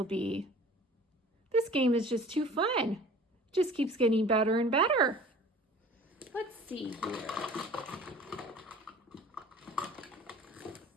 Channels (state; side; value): normal; both; correlation 0.45